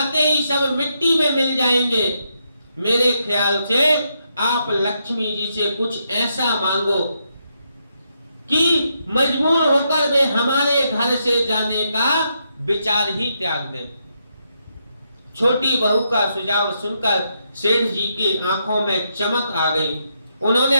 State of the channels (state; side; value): inverted; both; correlation -0.80